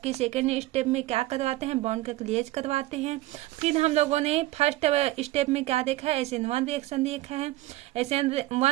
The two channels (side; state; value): left; quieter; 17.5 dB